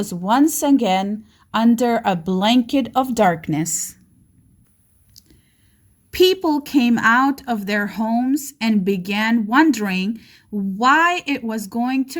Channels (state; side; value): identical; both; correlation 1.00